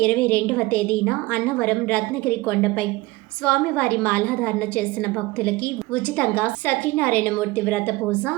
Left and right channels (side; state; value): left; quieter; 20.6 dB